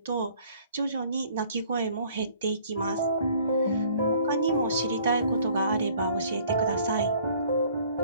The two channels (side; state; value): both; inverted; correlation -0.56